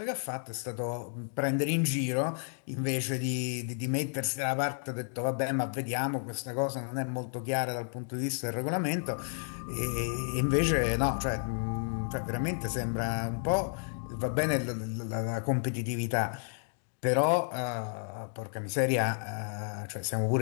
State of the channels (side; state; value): right; silent; digital silence